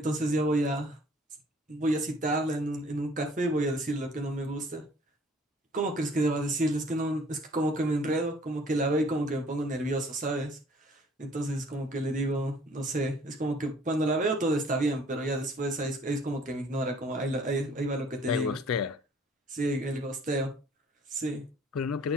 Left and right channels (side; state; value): both; normal; correlation 0.56